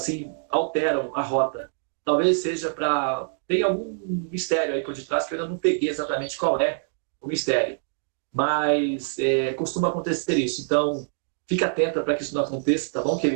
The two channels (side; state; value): left; silent; digital silence